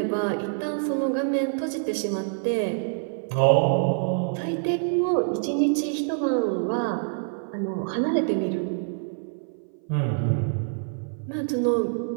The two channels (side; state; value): left; silent; 59 dB below the other